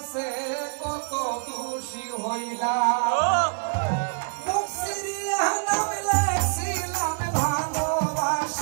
কত দোষী হইলাম। মুখ সিরিয়া নাম লেখছিলাম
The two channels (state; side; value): silent; left; 58 dB below the other